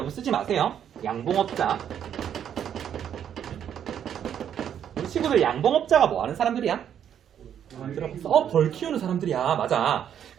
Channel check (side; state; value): left; quieter; 9.2 dB